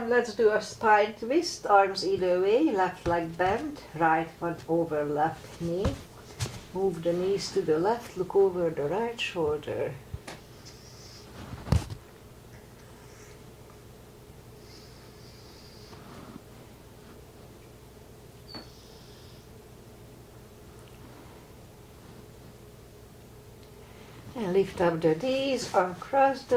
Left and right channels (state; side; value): identical; both; correlation 1.00